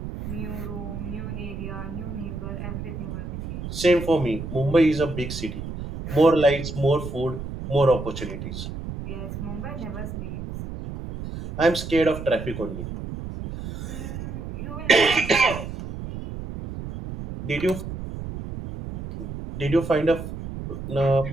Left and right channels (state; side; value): noise; right; rumble, 8 dB below the sound